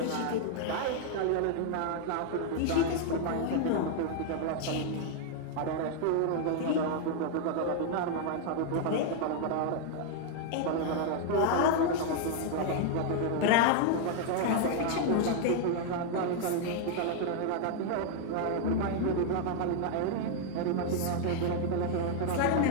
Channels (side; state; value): both; different; correlation 0.00